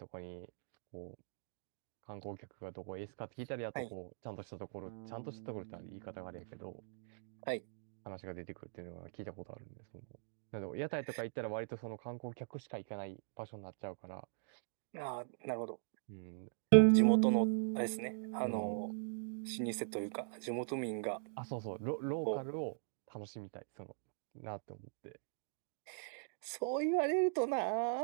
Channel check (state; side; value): silent; left; digital silence